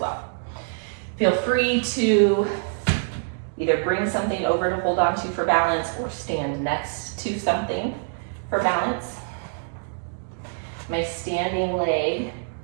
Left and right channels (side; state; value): left; silent; digital silence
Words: Feel free to either bring something over to hold on to for balance or stand next to something for balance. My standing leg,